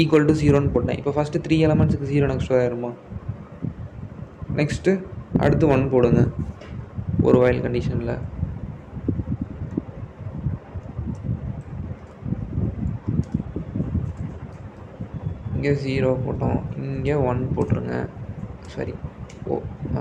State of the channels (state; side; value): identical; both; correlation 1.00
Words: equal to 0ன்னு போட்டேன். இப்போ ஃபஸ்ட்டு 3 எலமெண்ட்ஸுக்கு 0 நெக்ஸ்ட் ஆயிருமா? நெக்ஸ்ட்டு அடுத்து 1 போடுங்க ஒரு வைல் கண்டிஷனில். இங்கே 0 போட்டோம், இங்கே 1 போட்டுருங்க. சரி,